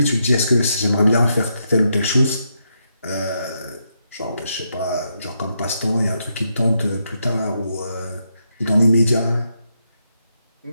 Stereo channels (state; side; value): inverted; both; correlation -0.81